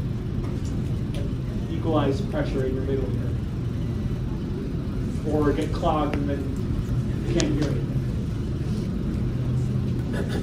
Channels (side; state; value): both; identical; correlation 1.00